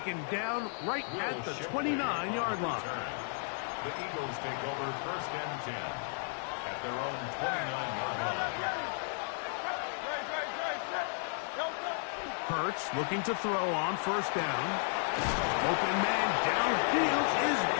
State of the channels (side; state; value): right; silent; 55 dB below the other